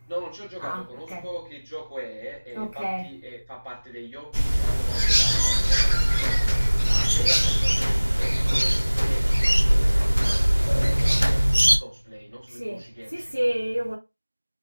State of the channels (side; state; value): both; inverted; correlation -1.00